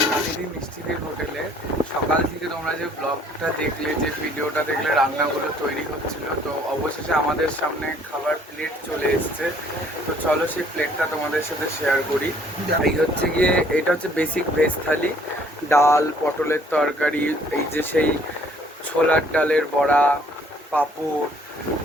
মিষ্টিদের হোটেলে সকাল থেকে তোমরা যে ব্লগটা দেখলে, যে ভিডিওটা দেখলে, রান্নাগুলো তৈরি হচ্ছিল, তো অবশেষে আমাদের সামনে খাবার প্লেট চলে এসছে। তো চলো সেই প্লেটটা তোমাদের সাথে শেয়ার করি। এই হচ্ছে গিয়ে, এটা হচ্ছে বেসিক ভেজ থালি, ডাল, পটলের তরকারি, এই যে সেই ছোলার ডালের বড়া, পাঁপড়,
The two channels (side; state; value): both; normal; correlation 0.60